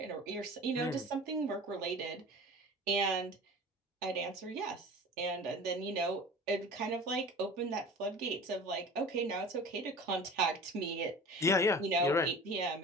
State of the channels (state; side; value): normal; both; correlation 0.39